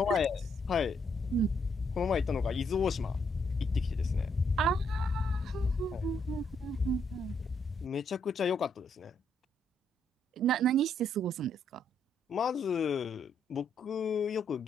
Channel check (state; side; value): normal; both; correlation 0.73